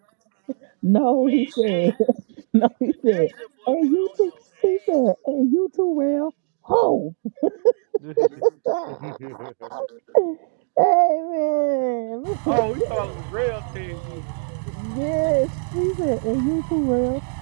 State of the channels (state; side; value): silent; left; 57 dB below the other